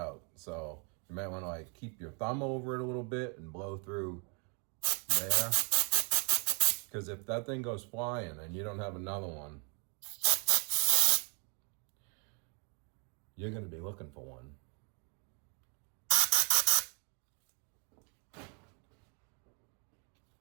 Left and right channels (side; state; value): left; quieter; 36.5 dB